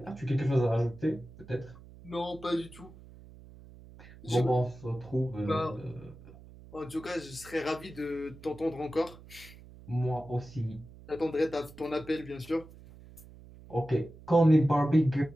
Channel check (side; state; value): right; noise; hum, 19 dB below the sound